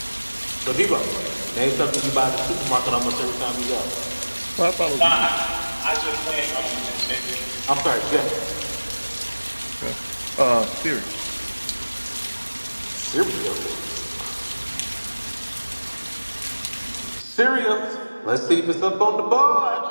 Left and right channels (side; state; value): both; inverted; correlation -1.00